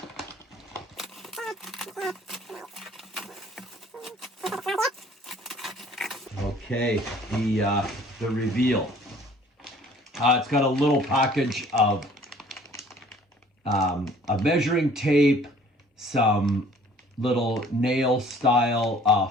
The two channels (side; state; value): both; normal; correlation 0.54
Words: Okay, the reveal. It's got a little package of a measuring tape, some little nail style